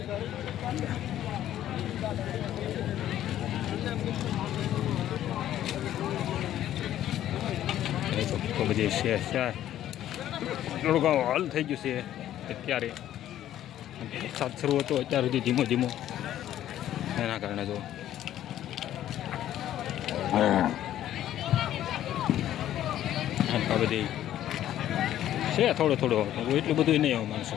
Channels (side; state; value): right; quieter; 12.2 dB